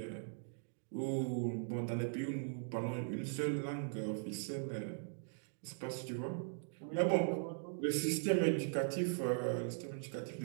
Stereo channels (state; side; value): silent; left; digital silence